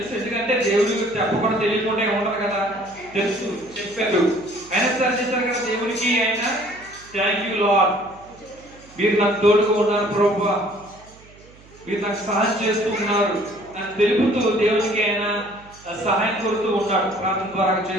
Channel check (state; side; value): noise; right; hum, 24 dB below the sound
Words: ఎందుకంటే దేవుడి చెప్పకుండా తెలియకుండా ఉండదు కదా, తెలుసు, చెప్పారు. అయినా సరే చేశారు కదా దేవునికి. ఆయన థ్యాంక్ యూ లార్డ్, మీరు నాకు తోడుగా ఉన్నారు ప్రభువా, మీరు నాకు సహాయం చేస్తూ ఉన్నారు అని తెలుపుతూ దేవునికి ఆయన సహాయం కోరుతూ ఉన్నాడు, ప్రార్థన ద్వారా